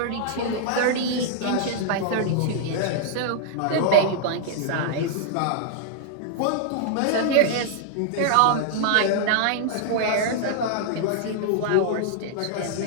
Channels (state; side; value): different; both; correlation -0.01